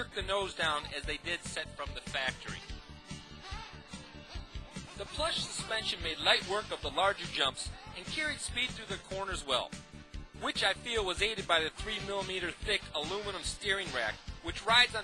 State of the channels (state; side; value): identical; both; correlation 1.00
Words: the nose down as they did set from the factory. The plush suspension made light work of the larger jumps and carried speed through the corners well, which I feel was aided by the 3mm thick aluminum steering rack, which rides on